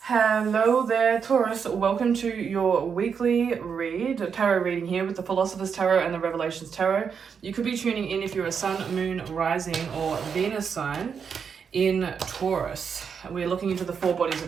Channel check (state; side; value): quieter; left; 6.6 dB